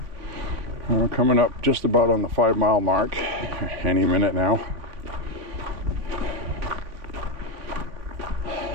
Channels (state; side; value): late; left; 3.6 ms